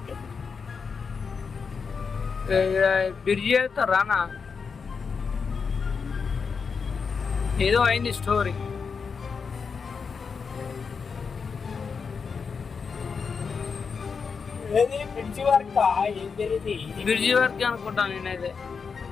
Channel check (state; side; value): quieter; right; 5.6 dB